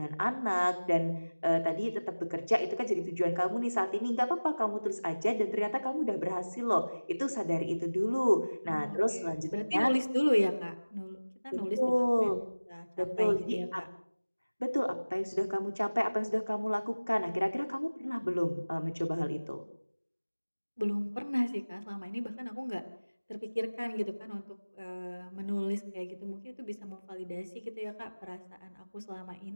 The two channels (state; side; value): inverted; both; correlation -1.00